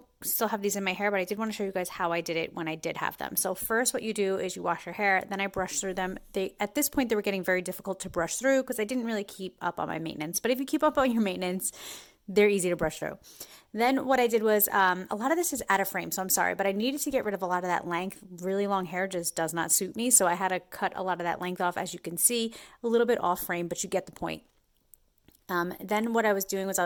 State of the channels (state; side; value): identical; both; correlation 1.00